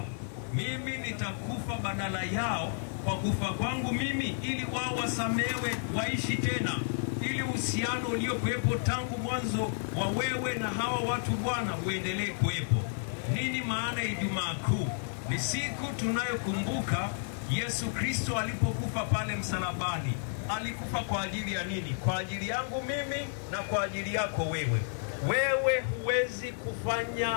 Mimi nitakufa badala yao kwa kufa kwangu mimi, ili wao wasamewe, waishi tena, ili uhusiano uliokuwepo tangu mwanzo wa wewe na hawa watu Bwana uendelee kuwepo. Nini maana ya Ijumaa Kuu? Ni siku tunayokumbuka Yesu Kristo alipokufa pale msalabani. Alikufa kwa ajili ya nini? Kwa ajili yangu mimi na kwa ajili yako wewe. Wewe huwezi kufanya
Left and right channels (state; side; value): silent; right; digital silence